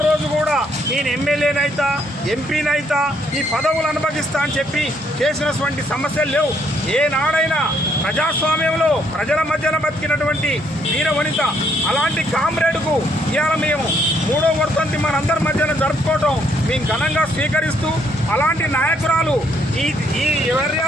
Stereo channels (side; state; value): both; normal; correlation 0.70